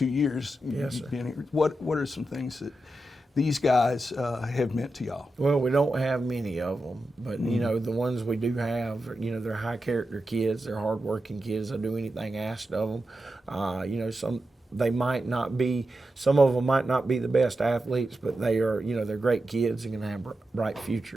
years. Yes, sir. What are some things that these guys have meant to y'all? Well, we don't have many of them, but the ones we do have, they're high character kids. They're hardworking kids. They'll do anything asked of them. Some of them might not be the best athletes, but they are, they're great kids and going to have bright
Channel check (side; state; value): both; normal; correlation 0.89